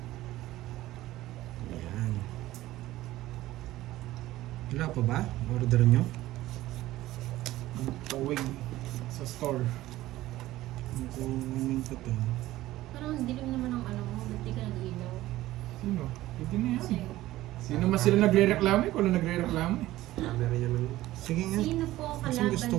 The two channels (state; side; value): quieter; left; 16.0 dB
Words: Yan. Wala pa ba? Order nyo? Tawig sa store. Kunin ko to. Parang ang dilim naman ang ano mo. Ba't di ka nag-ilaw? Sino? Pwede na yan. Kasi, Sino mas sila nagre-reklamo eh? Kung nagre-reklamo eh. Camera niya man. Sige nga. sino po Kasi kalaban gusto